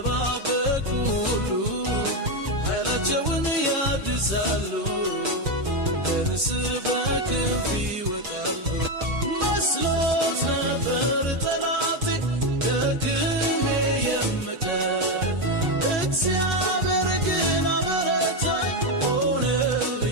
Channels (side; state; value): left; late; 6.3 ms